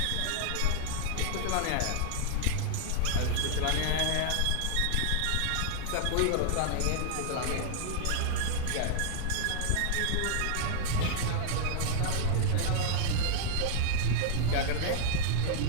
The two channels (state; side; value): different; both; correlation -0.01